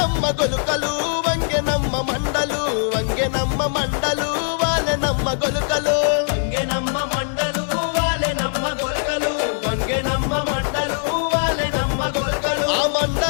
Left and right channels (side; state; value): right; silent; digital silence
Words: గొలుకలు వంగెనమ్మ మండలు వాళ్ళనమ్మ గొలుకలు వంగెనమ్మ మండలు వాళ్ళనమ్మ గొలకలు వంగెనమ్మ మండలు వాళ్ళనమ్మ గొలకలు ఆ